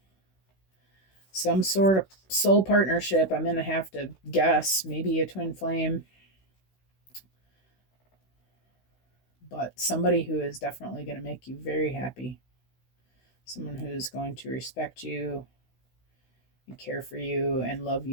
some sort of soul partnership. I'm going to have to guess. Maybe a twin flame. But somebody who is definitely going to make you very happy. Someone who's going to respect you and care for you and love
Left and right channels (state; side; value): late; right; 16 ms